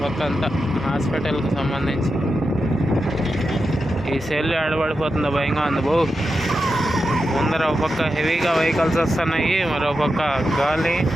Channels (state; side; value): normal; both; correlation 0.89